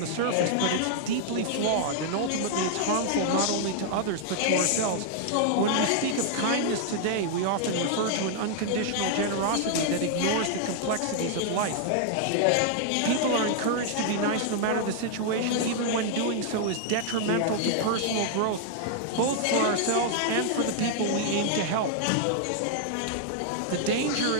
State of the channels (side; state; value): both; different; correlation -0.01